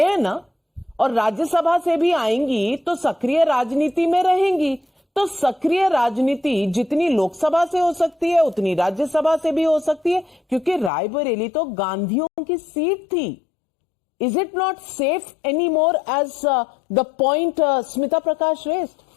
ना, और राज्यसभा से भी आएंगी तो सक्रिय राजनीति में रहेंगी। तो सक्रिय राजनीति जितनी लोकसभा से हो सकती है उतनी राज्यसभा से भी हो सकती है, क्योंकि रायबरेली तो गांधियों की सीट थी। Is it not safe anymore as the point Smita Prakash raised?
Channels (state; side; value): drops out; right; at 10.9 s